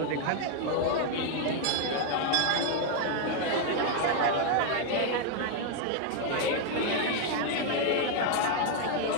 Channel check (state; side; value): different; both; correlation 0.00